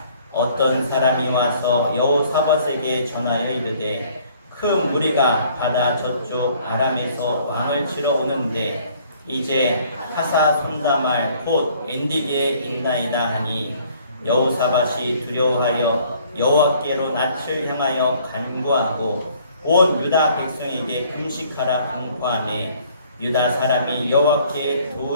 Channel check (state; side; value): inverted; both; correlation -0.59